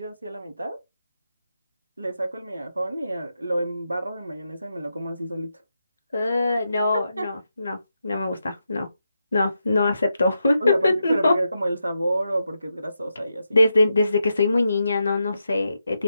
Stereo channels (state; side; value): inverted; both; correlation -0.86